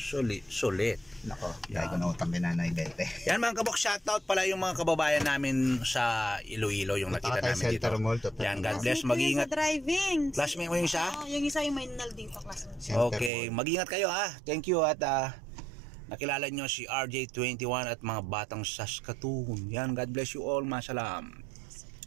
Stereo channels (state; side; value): drops out; left; at 13.3 s